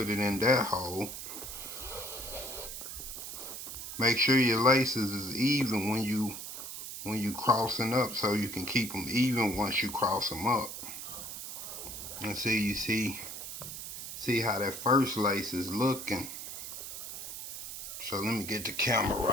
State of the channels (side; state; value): right; noise; hiss, 8 dB below the sound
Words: it in that hole. Make sure your laces is even when you crossing up, so you can keep them even once you cross them up. And see how that first lace is looking. So let me get the camera